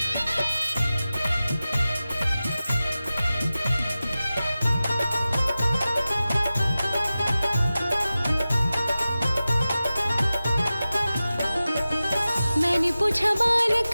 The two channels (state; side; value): inverted; both; correlation -0.95